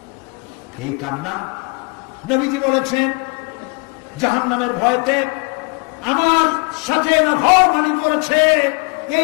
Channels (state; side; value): quieter; right; 31.9 dB